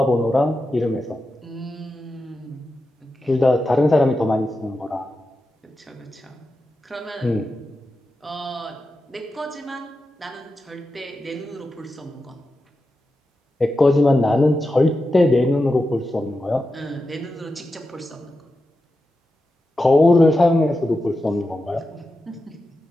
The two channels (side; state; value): both; normal; correlation 0.90